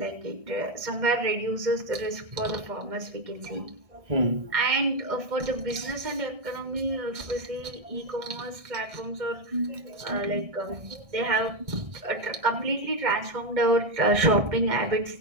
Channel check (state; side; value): late; left; 1.6 ms